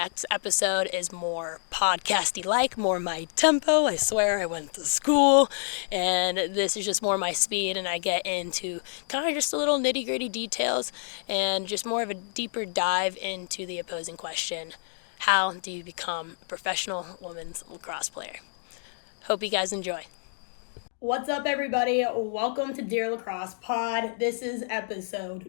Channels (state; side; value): silent; right; digital silence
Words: episode is more podcasty-like, more my tempo. I swear I went to school, and this is just more my speed, and I get into kind of just a little nitty-gritty details and just more of a deeper dive into the opposing question. How do you become a professional women's lacrosse player? Hope you guys enjoy. What's up, everybody? Welcome to Dear Lacrosse Pod. This is